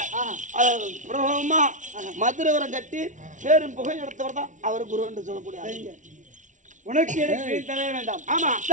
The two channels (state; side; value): late; left; 0.37 ms